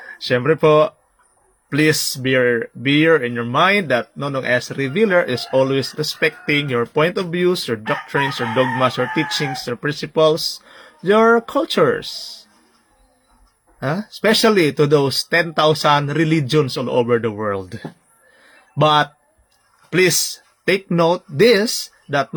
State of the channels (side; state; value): both; identical; correlation 1.00